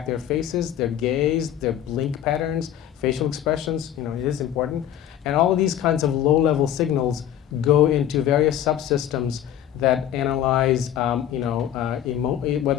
their faces, their gaze, their blink patterns, facial expressions. It is important. And all of these kinds of low-level signals go into various subsystems that analyze,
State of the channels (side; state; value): right; quieter; 10.8 dB